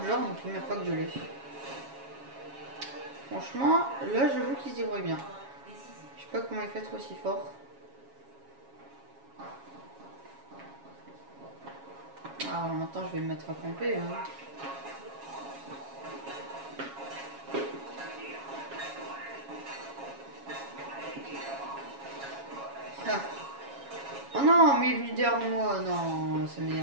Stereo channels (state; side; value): late; left; 7.3 ms